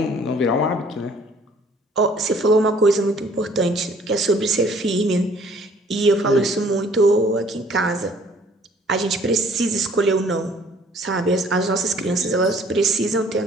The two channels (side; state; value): both; normal; correlation 0.57